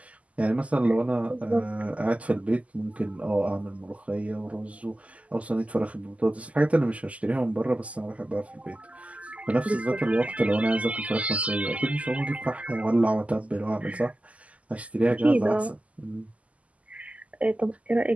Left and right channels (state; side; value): late; left; 0.069 ms